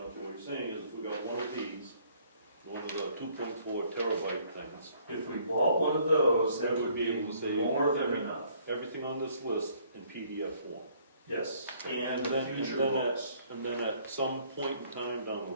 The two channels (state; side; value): inverted; both; correlation -0.62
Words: what you're saying is if we got one of these, one of the 2.4 terabyte things, If we bought one of those, that we would would be be able to say more than enough. everything on this list in PDF form. Yes, and And the then, future and then books. and then at some point in time down the